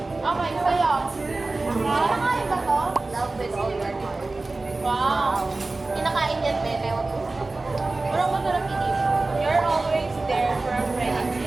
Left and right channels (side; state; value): left; quieter; 3.3 dB